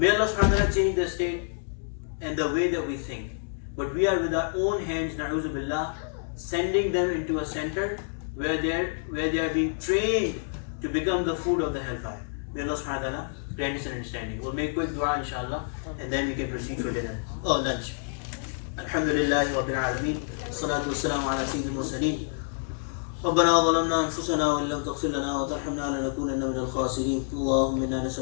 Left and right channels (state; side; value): silent; right; digital silence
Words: Allah subhanahu wa ta'ala change the state and the way that we think. But we are with our own hands, na'udhu billah, sending them into a center where they are being trained to become the food of the hellfire. May Allah subhanahu wa ta'ala grant us an understanding. We'll make quick dua inshallah and then we can proceed for dinner. Lunch. Alhamdulillahi Rabbil Alameen. Salatu wassalamu ala sayyidil mursaleen. ربنا ظلمنا أنفسنا وإن لم تغفر لنا وترحمنا لنكونن من الخاسرين. اللهم إنا